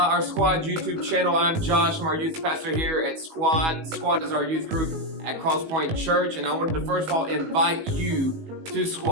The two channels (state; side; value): late; left; 19 ms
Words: our Squad YouTube channel. I'm Josh. I'm our youth pastor here at Squad. Squad is our youth group at Crosspoint Church, and I wanted to first of all invite you to